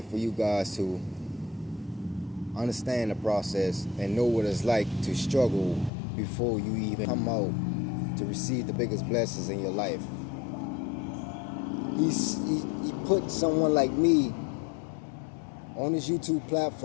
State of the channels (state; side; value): drops out; right; at 5.9 s